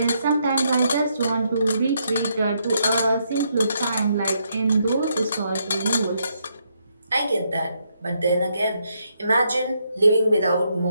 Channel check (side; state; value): both; inverted; correlation -0.77